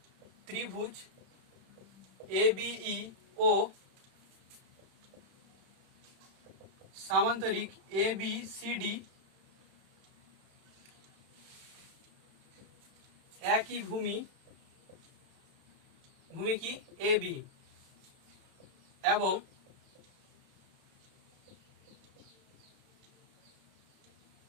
ত্রিভুজ ABE ও সামান্তরিক ABCD একই ভূমি, ভূমি কি AB, এবং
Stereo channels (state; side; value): late; left; 31 ms